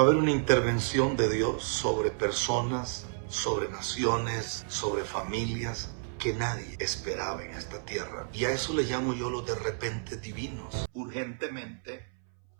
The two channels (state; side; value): silent; left; 57 dB below the other